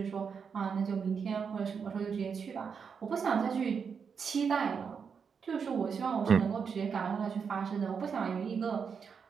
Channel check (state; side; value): quieter; left; 6.3 dB